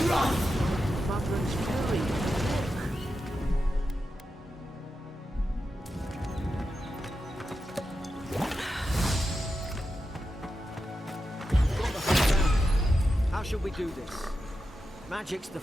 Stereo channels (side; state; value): both; normal; correlation 0.89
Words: life! Madron's fury. Got the whole round. How shall we do this? Magic's the